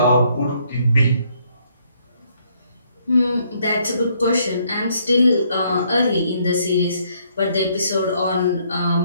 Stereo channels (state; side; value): inverted; both; correlation -0.69